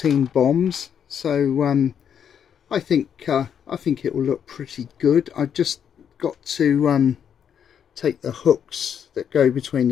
bombs. So I think it will look pretty good. I've just got to take the hooks that go between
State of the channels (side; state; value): right; quieter; 8.2 dB